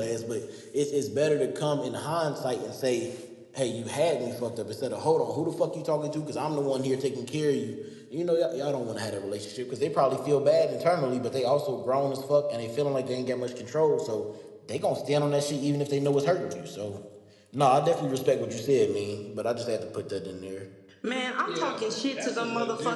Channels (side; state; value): both; identical; correlation 1.00